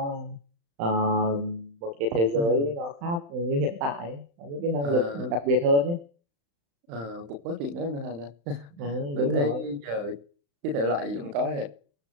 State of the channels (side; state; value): left; late; 35 ms